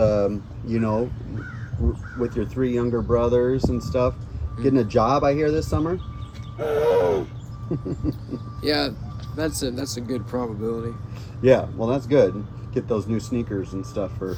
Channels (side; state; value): both; identical; correlation 1.00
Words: with your 3 younger brothers and stuff. Getting a job, I hear, this summer. Yeah, that's a good probability. Yeah, well, that's good. Get those new sneakers and stuff for